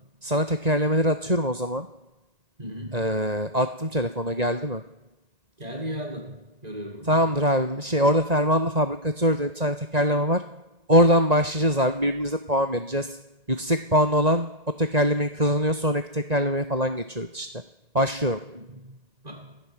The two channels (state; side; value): late; left; 1.9 ms